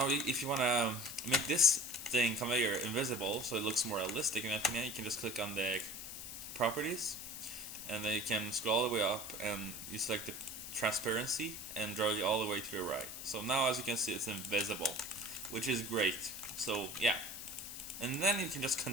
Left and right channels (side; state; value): left; noise; hiss, 9 dB below the sound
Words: if you want to make this thing conveyor invisible so it looks more realistic, in my opinion, you can just click on the properties, and then you can scroll all the way up and you select the transparency and drag it all the way to the right. So now as you can see, it's invisible, which is great. So yeah, and then you can just